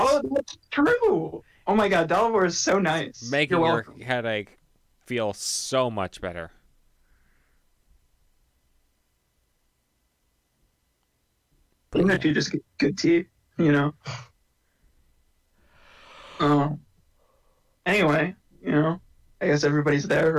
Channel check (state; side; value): identical; both; correlation 1.00